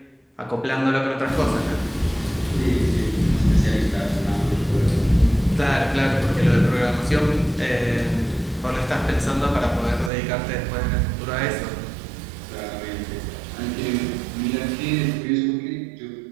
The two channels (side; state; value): left; drops out; at 10.1 s